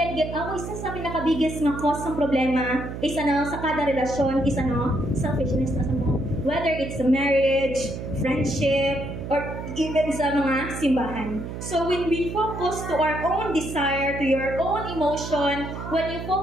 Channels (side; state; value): right; noise; hum, 8 dB below the sound